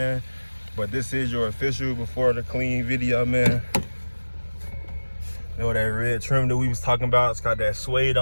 But this is your official before the clean video, man. You know that red trim that we was talking about? It's got that suede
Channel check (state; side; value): inverted; both; correlation -1.00